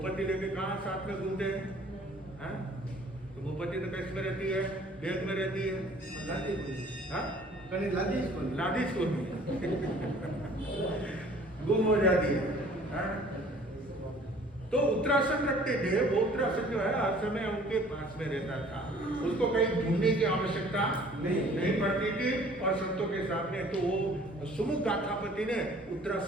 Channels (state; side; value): normal; both; correlation 0.53